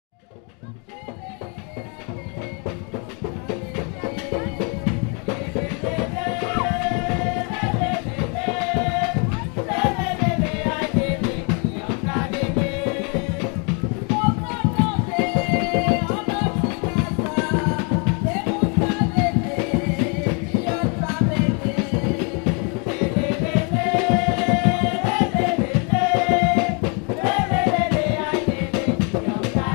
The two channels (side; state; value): right; quieter; 35.9 dB